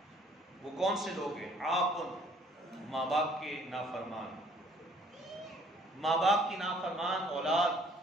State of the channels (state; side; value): normal; both; correlation 0.59